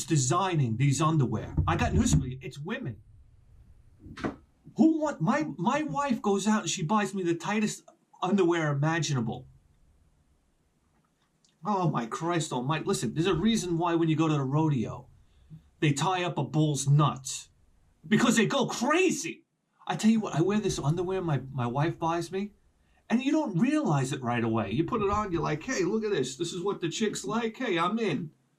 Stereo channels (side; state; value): both; identical; correlation 1.00